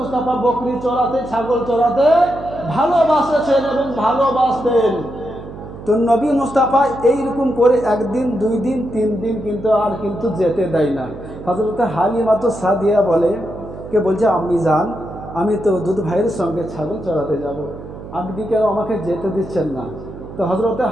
বকরি চড়াতে ছাগল চড়াতে ভালোবাসেছেন এবং ভালোবাসতেন। তো নবী মুস্তাফা এইরকম করে একদিন দুই দিন তিন দিন কিন্তু যেতে দেয় না। হযরত হালিমা তো সাদিয়া বলছে আমি যান, আমি তো দুধ ভাইয়ের সঙ্গে ছাগল চড়াতে যাব, আপনি কেন আমাকে যেতে দিচ্ছেন না? তো হযরত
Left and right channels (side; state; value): right; noise; hum, 13 dB below the sound